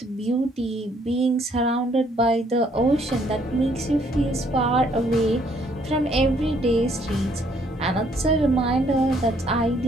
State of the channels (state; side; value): normal; both; correlation 0.66